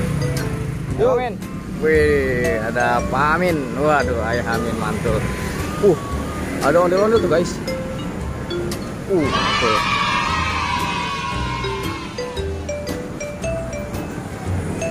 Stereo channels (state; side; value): identical; both; correlation 1.00